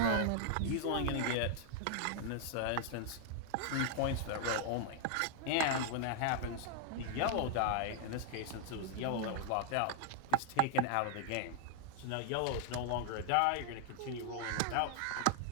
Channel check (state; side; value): different; both; correlation 0.00